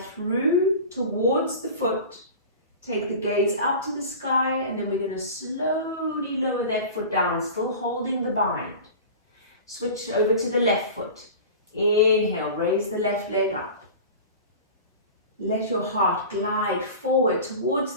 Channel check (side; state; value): both; inverted; correlation -0.35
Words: through towards the foot. Take the gaze up to the sky, and then we're going to slowly lower that foot down, still holding the bind. Switch over to the left foot. Inhale, raise the left leg up. Let your heart glide forward towards